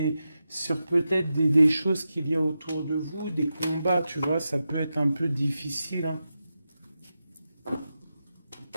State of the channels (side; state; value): both; inverted; correlation -0.90